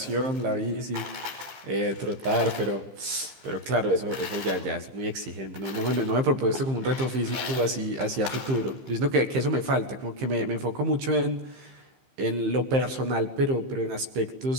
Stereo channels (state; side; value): late; left; 15 ms